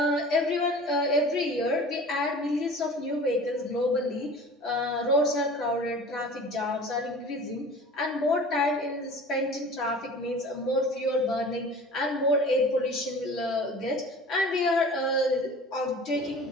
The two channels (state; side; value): normal; both; correlation 0.41